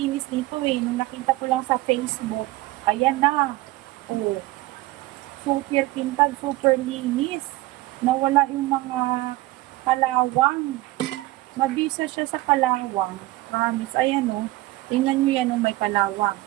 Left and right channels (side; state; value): left; quieter; 18.6 dB